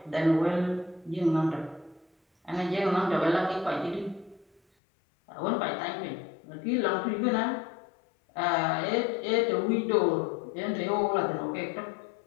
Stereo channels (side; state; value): right; drops out; at 4.6 s